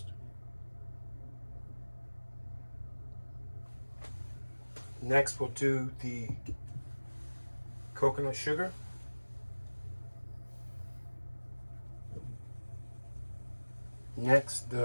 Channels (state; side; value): inverted; both; correlation -1.00